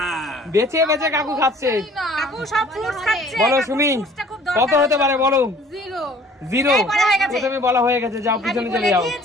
বেছে বেছে কাকু খাচ্ছে। কাকু সব ফ্রুটস খাচ্ছে। বলো কাকু সুমি fruitsটা খুব দরকার কত হতে পারে বলো। 0 0 এই বলা হয়ে গেছে। প্রথমে বলা হয়ে গেছে, যাও পিছনে চলে যাও।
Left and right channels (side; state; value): both; normal; correlation 0.52